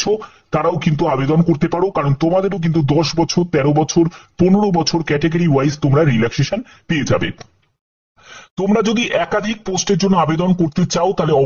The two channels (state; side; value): identical; both; correlation 1.00